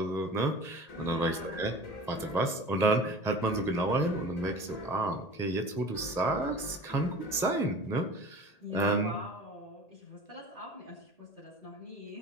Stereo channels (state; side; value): late; right; 1.8 ms